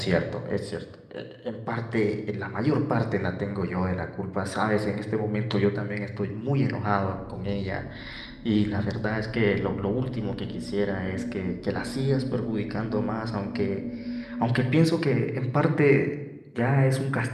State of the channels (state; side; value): identical; both; correlation 1.00